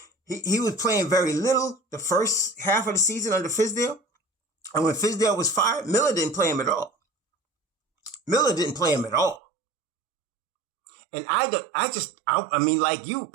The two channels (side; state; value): left; drops out; at 9.4 s